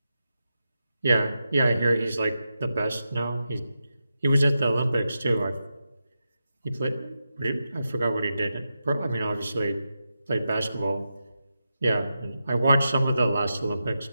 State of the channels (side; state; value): both; inverted; correlation -0.89